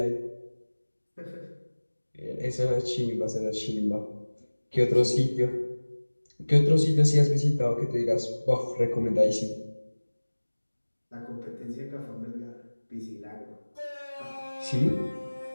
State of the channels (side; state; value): both; inverted; correlation -1.00